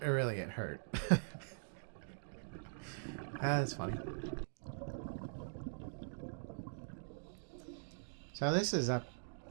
it hurt. That's funny. So this is up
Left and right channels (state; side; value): silent; left; digital silence